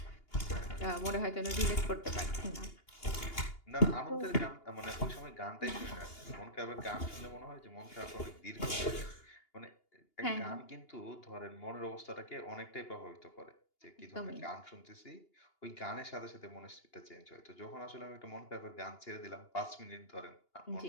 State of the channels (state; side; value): late; right; 2.8 ms